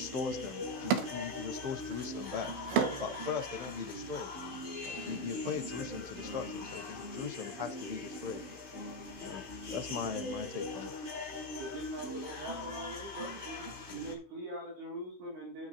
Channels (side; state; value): left; late; 15 ms